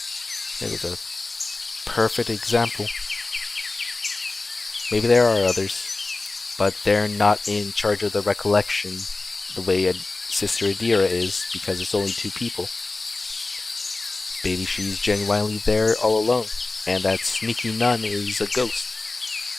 It was a perfect example. Maybe there are others, but they're not in charge of the recollection the way Sister Adira is, because it's only 2 people. Maybe she's genuinely there all alone, and that sneaky nun is a ghost.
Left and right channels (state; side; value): quieter; right; 3.3 dB